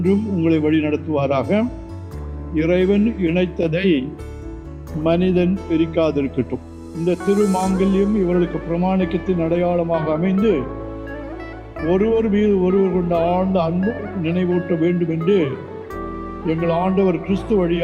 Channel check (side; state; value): both; identical; correlation 1.00